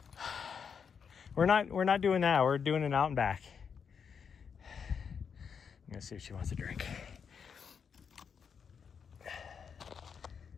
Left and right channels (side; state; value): right; quieter; 6.7 dB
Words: We're not doing that. We're doing an out and back. I'm gonna see if she wants a drink.